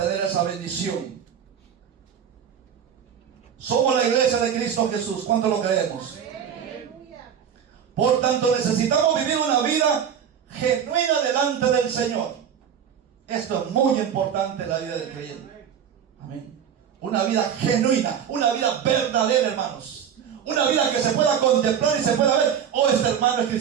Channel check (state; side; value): quieter; left; 8.3 dB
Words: esa bendición. Somos la iglesia de Cristo Jesús. ¿Cuánto lo creemos? Por tanto, necesitamos vivir una vida genuina delante del Señor. Esto es muy importante en la vida del creyente. Amén. Una vida genuina, una vida verdadera, hermanos. Una vida que se pueda contemplar y se pueda ver, oh, este hermano es